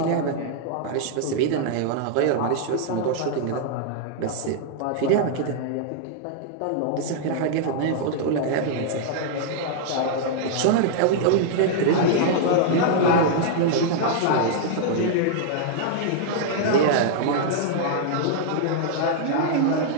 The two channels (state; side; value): different; both; correlation -0.01